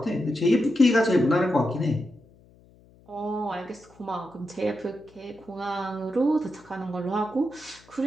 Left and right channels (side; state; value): left; noise; hum, 27 dB below the sound